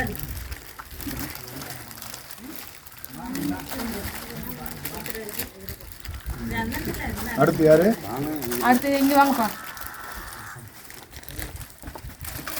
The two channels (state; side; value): identical; both; correlation 1.00